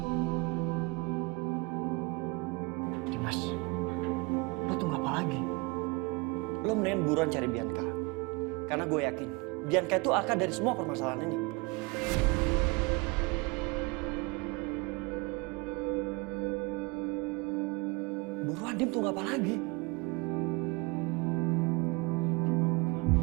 Dimas, lo tunggu apa lagi? Lo mendingan buruan cari Bianca. Karena gue yakin Bianca itu akar dari semua permasalahan ini. Buruan, Dim, tunggu apa lagi?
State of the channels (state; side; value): quieter; left; 27.4 dB